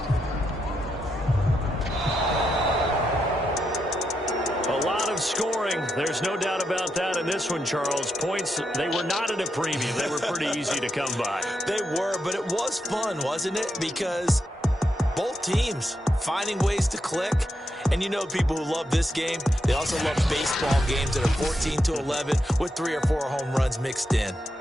A lot of scoring. There's no doubt about that in this one, Charles. Points, they were not at a premium. They were pretty easy to come by. They were, but it was fun, wasn't it? Because both teams finding ways to click. And you know people who love this game, they also love baseball games that are 14-11 with 3 or 4 home runs mixed in.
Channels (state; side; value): normal; both; correlation 0.84